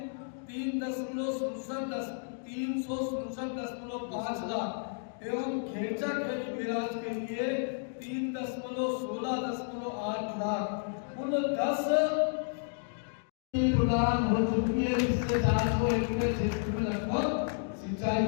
367.5 लाख एवं खेचा खेरी बैराज के लिए 3.16.8 लाख कुल 10 प्रदान हो चुकी है, जिससे 400 एकड़ क्षेत्र में लगभग सिंचाई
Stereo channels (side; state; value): right; silent; digital silence